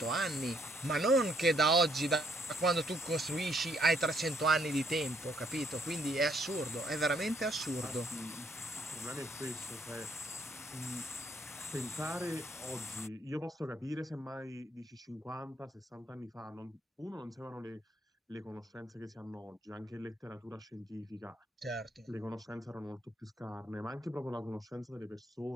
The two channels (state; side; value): normal; both; correlation 0.70